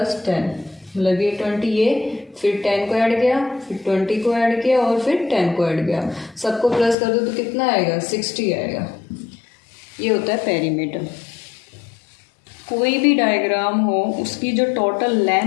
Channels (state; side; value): drops out; right; at 7.0 s